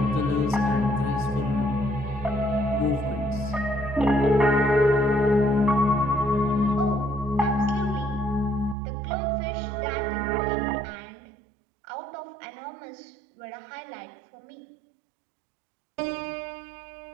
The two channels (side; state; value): left; drops out; at 8.8 s